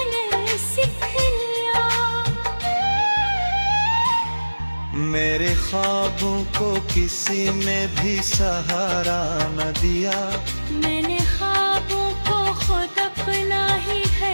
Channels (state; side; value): inverted; both; correlation -1.00